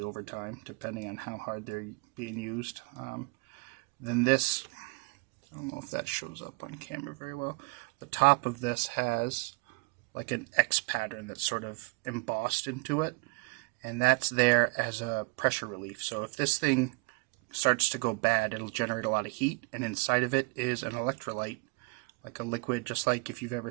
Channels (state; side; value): quieter; left; 28.7 dB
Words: over time, depending on how hard they're being used, then this, I don't know if that shows up on camera very well, the top of this has like an X pattern that's sort of embossed into it, and that's there as a pressure relief. So if this thing starts to go bad, it'll generate a lot of heat, and inside of it is an electrolyte, like a liquid, just like if you've ever